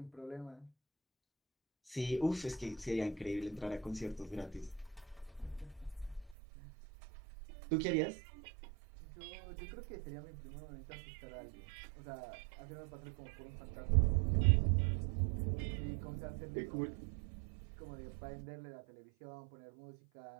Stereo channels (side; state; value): left; drops out; at 6.4 s